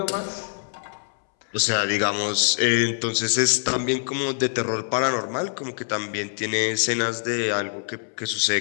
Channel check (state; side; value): silent; right; 62 dB below the other